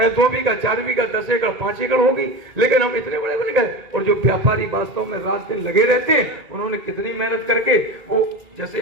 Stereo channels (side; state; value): left; late; 2.3 ms